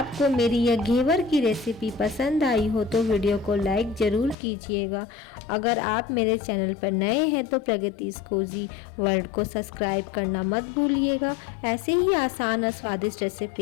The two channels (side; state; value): right; drops out; at 4.4 s